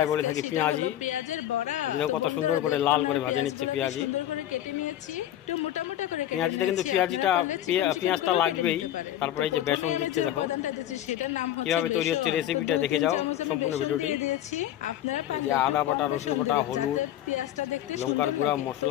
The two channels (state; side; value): quieter; right; 12.2 dB